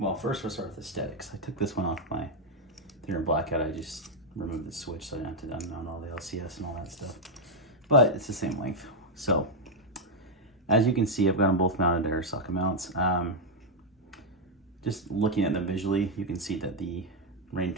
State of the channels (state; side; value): normal; both; correlation 0.00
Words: first we'll start with aesthetics. I took this one off my thinner blackout. I just removed the switch so I didn't have to unmount all the LCS and all that stuff. But it's the same length. So, as you can see, I've got them both mounted to air socket mounts. Just looking at them visually, you can see that the Rein